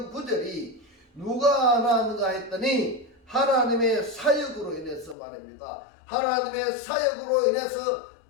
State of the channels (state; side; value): drops out; right; at 5.2 s